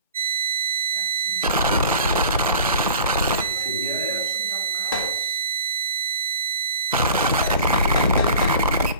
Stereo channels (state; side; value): inverted; both; correlation -0.42